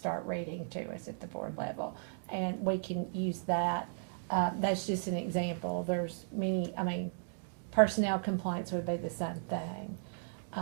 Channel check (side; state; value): left; silent; digital silence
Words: reading to us at the board level. And we can use that. That's just an example. There's many, personnel complaints would be the same thing.